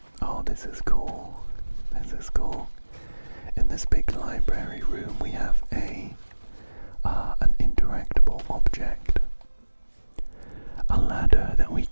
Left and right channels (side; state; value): both; inverted; correlation -1.00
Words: this is cool. This is cool. In this big library room we have an interactable object. A ladder that we